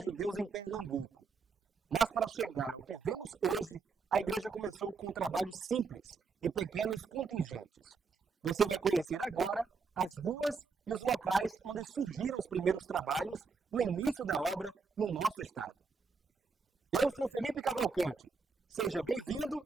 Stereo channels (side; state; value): left; quieter; 4.8 dB